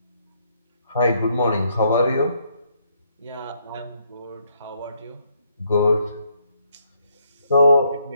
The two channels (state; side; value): inverted; both; correlation -0.72